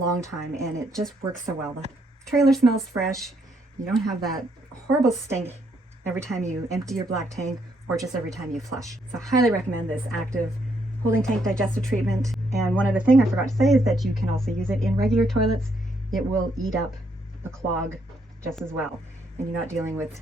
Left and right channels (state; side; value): normal; both; correlation 0.73